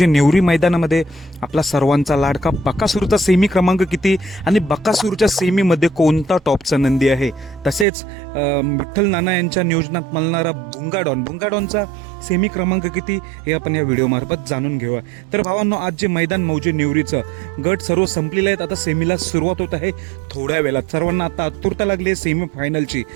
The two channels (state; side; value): drops out; left; at 7.9 s